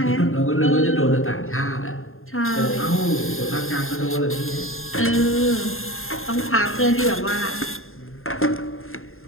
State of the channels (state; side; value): late; right; 0.61 ms